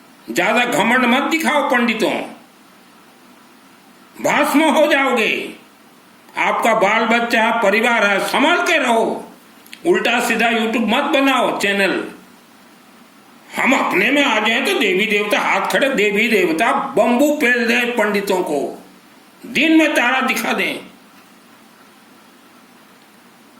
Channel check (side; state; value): both; identical; correlation 1.00